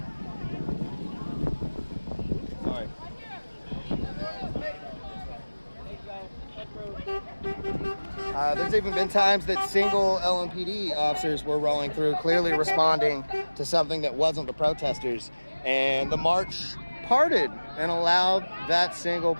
Sorry. There's even been times that single LMPD officers were rolling through, clearly responding to something that wasn't the protesters, and the march parted and allowed that single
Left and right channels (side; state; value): both; inverted; correlation -1.00